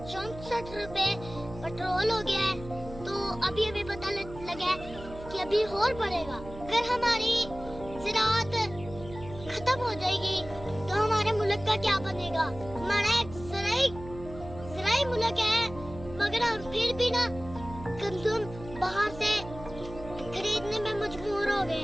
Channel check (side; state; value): right; noise; hum, 14 dB below the sound